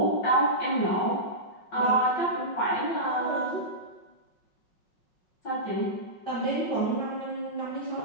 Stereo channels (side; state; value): right; late; 5.4 ms